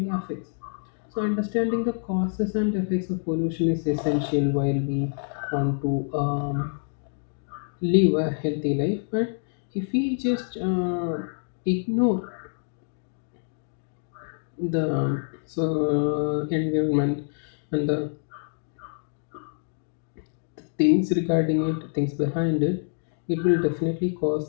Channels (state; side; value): silent; right; digital silence